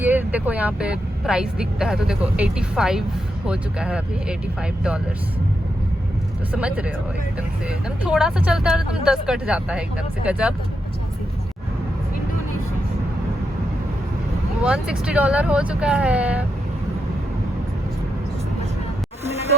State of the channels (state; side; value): normal; both; correlation 0.84